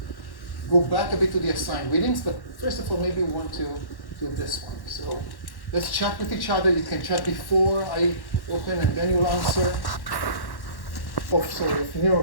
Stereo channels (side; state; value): right; late; 1.1 ms